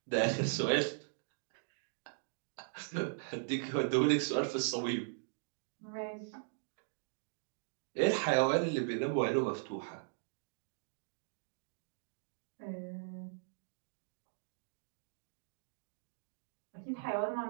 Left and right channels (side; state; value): left; silent; digital silence